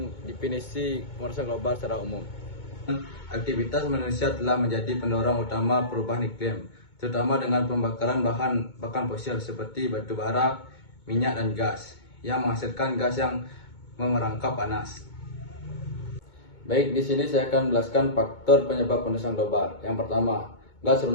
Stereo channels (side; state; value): right; late; 2.2 ms